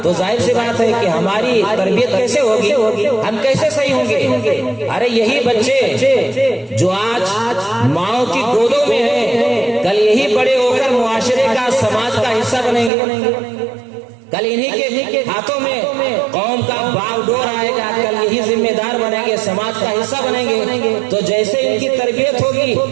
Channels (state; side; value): drops out; left; at 12.9 s